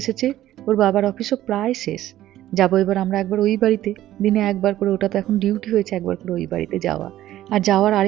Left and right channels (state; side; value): quieter; left; 13.7 dB